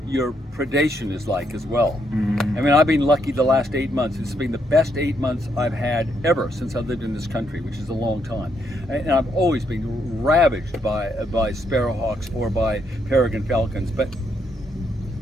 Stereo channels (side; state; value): both; normal; correlation 0.76